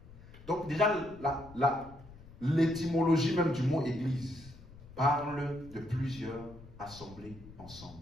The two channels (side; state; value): left; noise; rumble, 19 dB below the sound